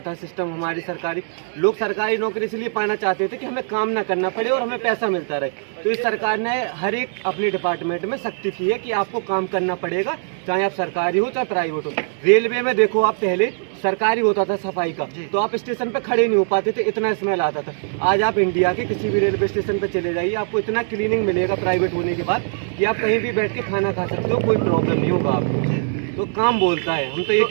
था सिस्टम हमारी सरकारी, लोग सरकारी नौकरी इसलिए पाना चाहते थे कि हमें काम ना करना पड़े और हमें पैसा मिलता रहे। तो इस सरकार ने हर एक अपने डिपार्टमेंट में सख्ती की है कि आपको काम करना पड़ेगा, चाहे आप सरकारी हो चाहे प्राइवेट हो। रेलवे में देखो, आप पहले सरकारी होता था सफाई का, तो आप स्टेशन पे खड़े नहीं हो पाते थे, इतना स्मेल आता था। आज आप इंडिया के किसी भी रेलवे स्टेशन पे चले जाइए, आपको इतना क्लीनिंग मिलेगा प्राइवेट होने के बाद कि आप कहीं भी बैठ के खाना खा सकते हो, कोई प्रॉब्लम नहीं होगा आपको। तो काम बोलता है। हम तो ये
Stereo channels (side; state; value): left; silent; digital silence